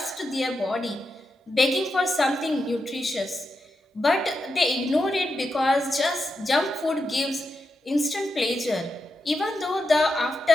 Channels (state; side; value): normal; both; correlation 0.87